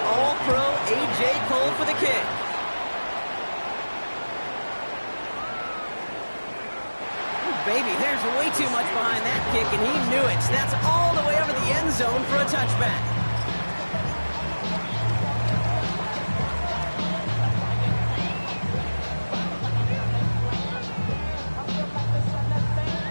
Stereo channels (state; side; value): inverted; both; correlation -1.00